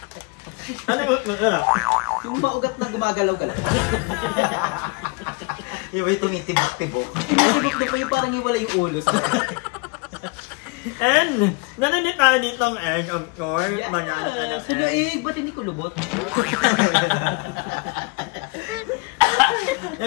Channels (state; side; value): quieter; right; 30.2 dB